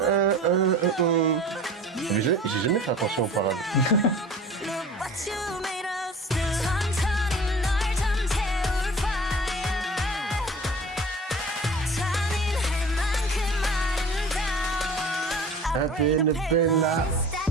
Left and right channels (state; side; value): normal; both; correlation 0.42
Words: J'ai jamais fait attention aux paroles. Up in the Bella.